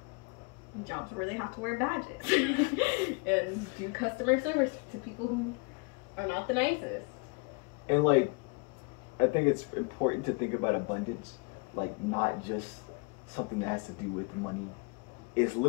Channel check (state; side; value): quieter; right; 31.4 dB